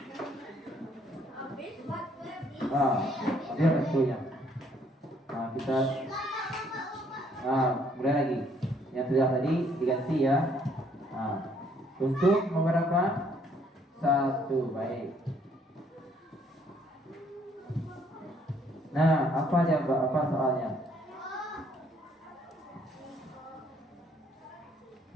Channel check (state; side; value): normal; both; correlation 0.65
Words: Dia restunya. Nah, kita mulai lagi. Yang sudah tadi diganti ya. Untuk beberapa 1. Baik. Nah, apa jawab? Apa soalnya?